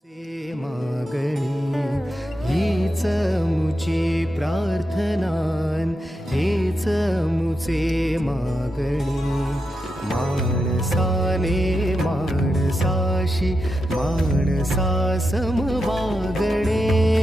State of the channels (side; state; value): both; normal; correlation 0.87